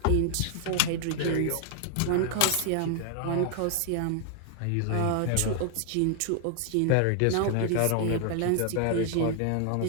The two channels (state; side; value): different; both; correlation 0.00